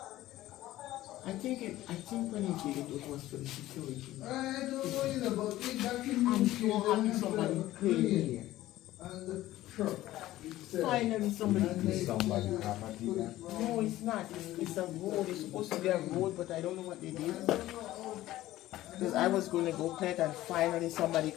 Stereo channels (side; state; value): right; quieter; 15.4 dB